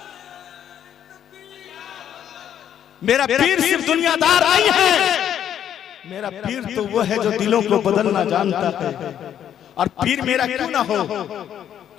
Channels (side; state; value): right; quieter; 9.9 dB